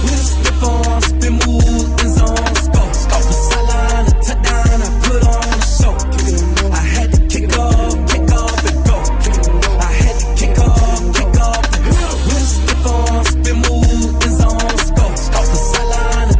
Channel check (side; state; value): both; identical; correlation 1.00